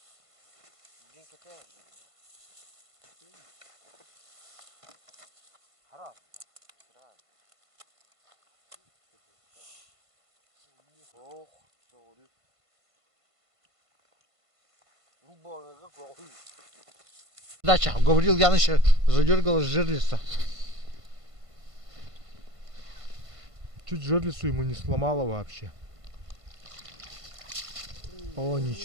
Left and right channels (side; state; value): left; late; 1.5 ms